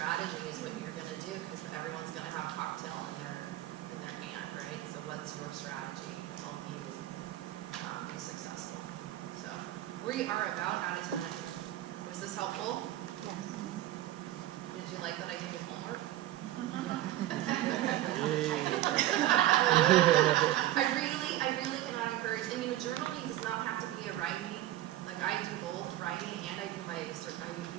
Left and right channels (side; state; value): left; quieter; 14.5 dB